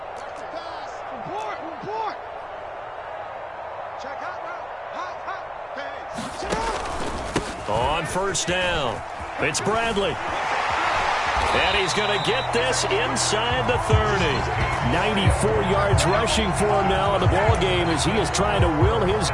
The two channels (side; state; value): both; identical; correlation 1.00